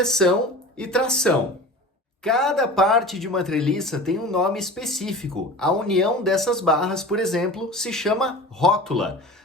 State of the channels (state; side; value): normal; both; correlation 0.36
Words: e tração. Cada parte de uma treliça tem um nome específico. A união dessas barras, por exemplo, se chama rótula.